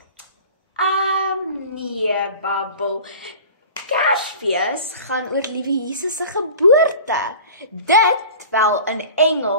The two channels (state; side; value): inverted; both; correlation -0.40